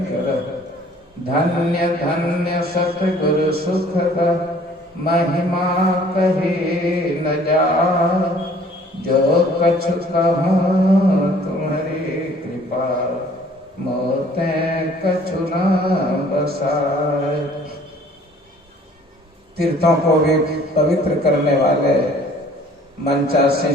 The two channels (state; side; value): normal; both; correlation 0.55